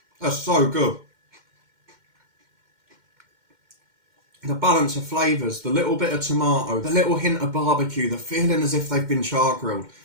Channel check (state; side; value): late; left; 2.1 ms